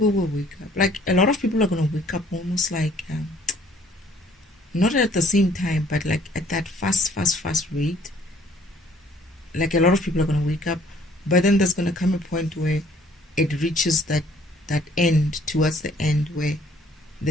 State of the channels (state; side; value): normal; both; correlation 0.59